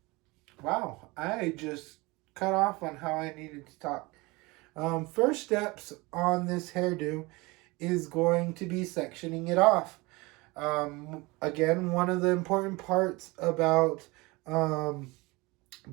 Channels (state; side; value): quieter; left; 24.0 dB